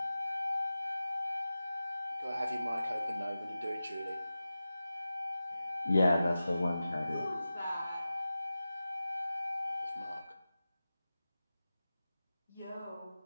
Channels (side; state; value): both; inverted; correlation -0.94